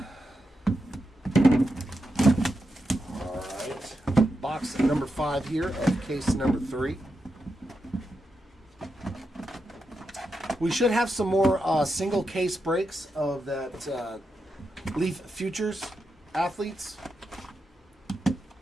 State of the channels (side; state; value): both; normal; correlation 0.86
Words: right. Box number 5 here of case number 3. We should have some more single case breaks of that Leaf Futures athletes.